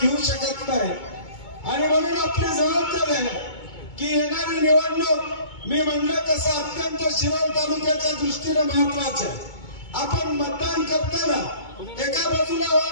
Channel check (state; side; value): late; right; 2.2 ms